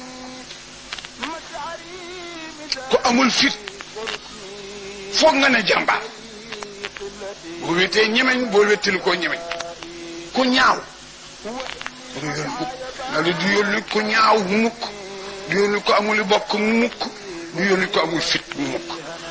ku amul fit foog nga ne jàmbaar boo wetee ñemeñ boo wettili koo ñemeñ ku ñaaw du yónni mukk nga li du yónni ku ñaaw mukk du yónni ko amuli bokk mukk du yónni ko amul fit mukk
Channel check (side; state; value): both; identical; correlation 1.00